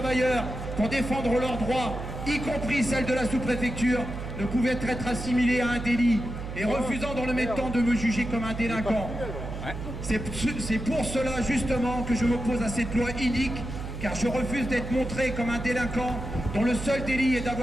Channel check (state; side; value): noise; right; hum, 8 dB below the sound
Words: pour défendre leurs droits, y compris celles de la sous-préfecture, ne pouvaient être assimilées à un délit et refusant dans le même temps de me juger comme un délinquant. C'est pour cela justement que je m'oppose à cette loi inique, car je refuse d'être montré comme un délinquant dont le seul délit est